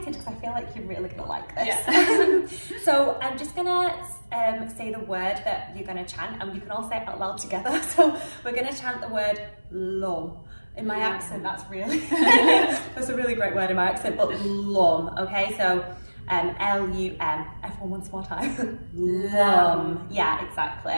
because I feel like you're really gonna like this. Yeah. So I'm just gonna say the word that you're gonna chant, and you can all say it out loud together. So we're gonna chant the word LUM. In my accent, that's really, that's a really great word in my accent, but LUM, okay? So L-U-M, everyone once more time. LUM, yeah, exactly.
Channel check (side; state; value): both; inverted; correlation -1.00